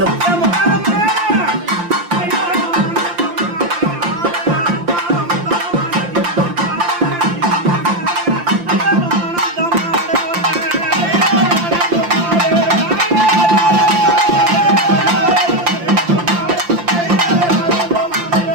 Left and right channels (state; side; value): late; left; 5.8 ms